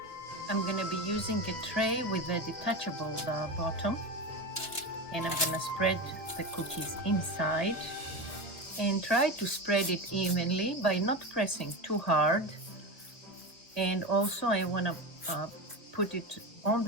I'm going to be using a tray with a detachable bottom, and I'm going to spread the cookies inside and try to spread it evenly by not pressing too hard. And also I want to put it on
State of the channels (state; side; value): late; right; 1.9 ms